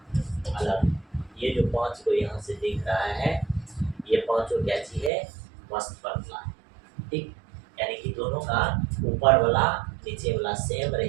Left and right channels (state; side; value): drops out; left; at 5.1 s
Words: अलग, ये जो 5 को यहाँ से दिख रहा है ये 5 को क्या चीज है मस्त फॉर्मूला है ठीक। यानी कि दोनों का ऊपर वाला नीचे वाला सेम